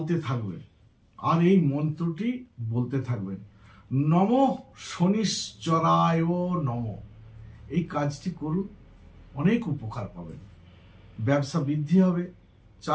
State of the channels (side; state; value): both; identical; correlation 1.00